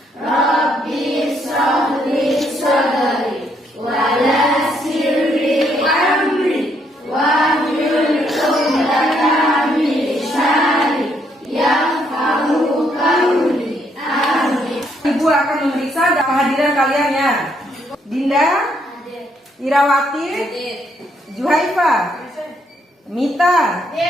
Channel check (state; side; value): normal; both; correlation 0.72